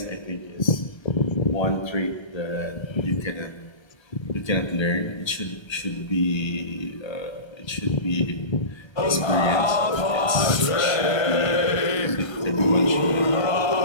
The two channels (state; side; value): late; right; 1.3 ms